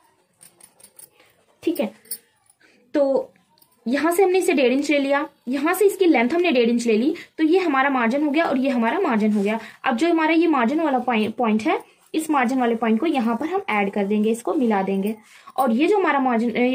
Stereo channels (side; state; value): both; identical; correlation 1.00